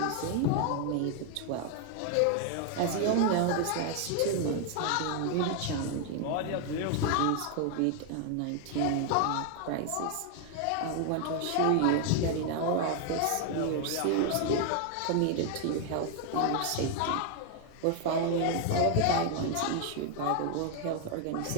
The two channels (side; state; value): both; different; correlation 0.00